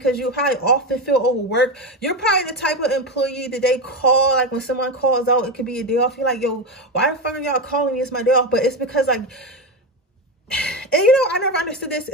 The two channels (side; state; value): both; normal; correlation 0.15